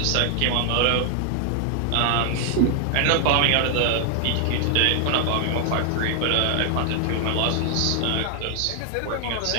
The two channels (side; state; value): both; different; correlation 0.00